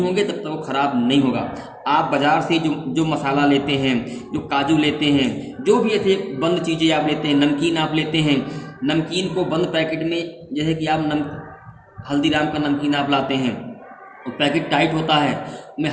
तब तक वो ख़राब नहीं होगा। आप बाज़ार से जो मसाला लेते हैं, जो काजू लेते हैं, जो भी ऐसे बंद चीज़ें आप लेते हैं, नमकीन आप लेते हैं, नमकीन को बंद पैकेट में, जैसे कि आप हल्दीराम का नमकीन आप लाते हैं, वो पैकेट टाइट होता है, उसमें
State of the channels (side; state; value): both; identical; correlation 1.00